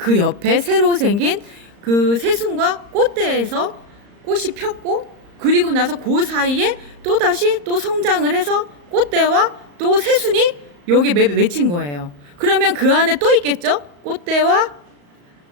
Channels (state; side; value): late; left; 35 ms